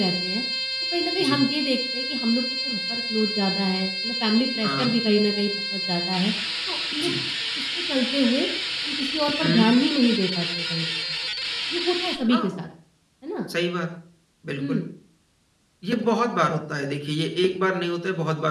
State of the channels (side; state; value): both; identical; correlation 1.00